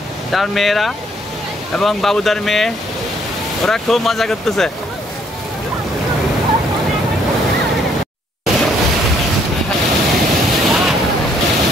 তার মেয়েরা এবং বাবুদার মেয়ে ওরা খুব মজা করতেছে।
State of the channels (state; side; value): normal; both; correlation 0.66